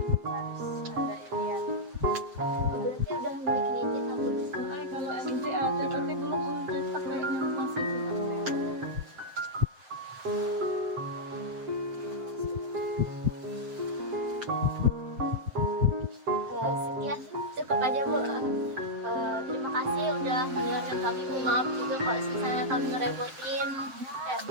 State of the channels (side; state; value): left; late; 7.7 ms